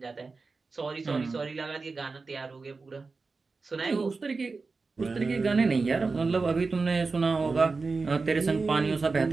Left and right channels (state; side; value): quieter; left; 4.1 dB